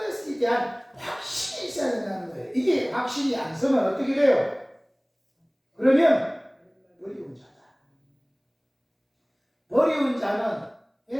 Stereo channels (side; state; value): both; identical; correlation 1.00